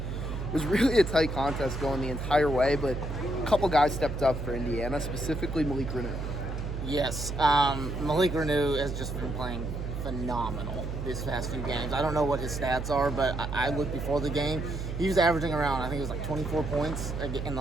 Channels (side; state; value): right; noise; hum, 5 dB below the sound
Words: was really a tight contest going the entire way, but a couple guys stepped up for Indiana, specifically Malik Renu. Yes, Malik Renu has just been playing phenomenal these past few games. I don't know what his stats are, but I looked before the game. He was averaging around, I think it was like 24 points in the